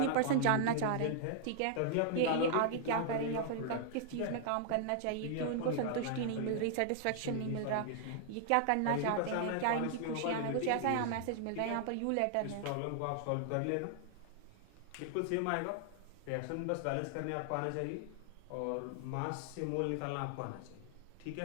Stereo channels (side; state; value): both; different; correlation -0.01